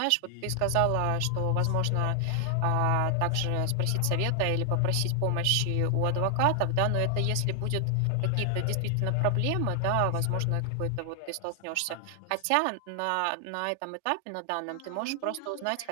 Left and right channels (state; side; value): different; both; correlation 0.00